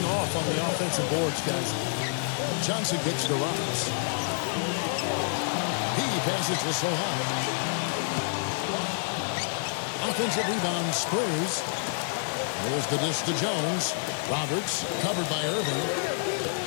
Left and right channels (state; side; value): silent; right; digital silence